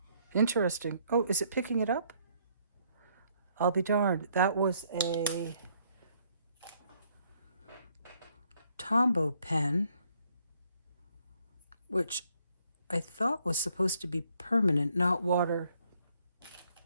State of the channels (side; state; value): both; inverted; correlation -0.68